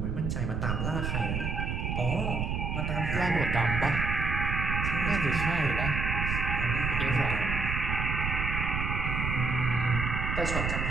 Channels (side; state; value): right; noise; rumble, 1 dB below the sound